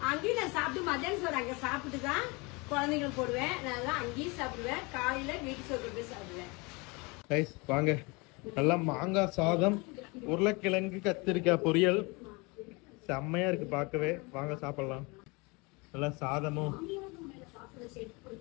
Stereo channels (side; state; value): right; quieter; 27.5 dB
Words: அங்கேயும் நான் சாப்பிட்டு மத்தியானம் சோறு அங்க சாப்பிட்டு தான் குழந்தைங்களுக்கு போடுவேன். நான் அங்கேயும் சாப்பிடுவேன். காலையில வீட்டு சோறு போய் சாப்பிடுவேன். வாங்க நல்லா மாங்காய் சாதம், உருளைக்கிழங்கு கத்திரிக்காய் பொரியல் செம்மையா இருக்கு பார்க்கவே. வாங்க சாப்பிடலாம். நல்லா சாதமும்